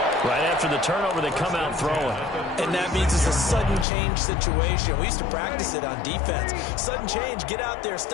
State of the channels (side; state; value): right; drops out; at 3.9 s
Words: Right after the turnover, they come out throwing. And that means it's a sudden change situation. We used to practice it on defense. Sudden change, get out there,